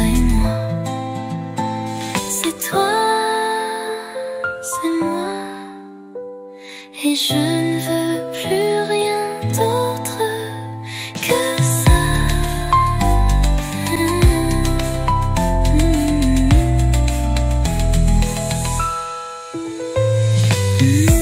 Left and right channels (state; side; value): identical; both; correlation 1.00